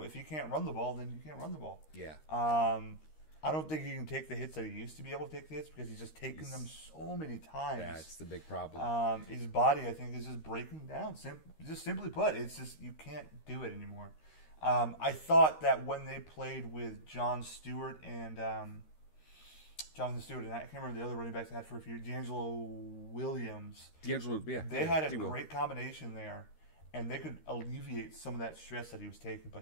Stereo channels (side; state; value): right; late; 13 ms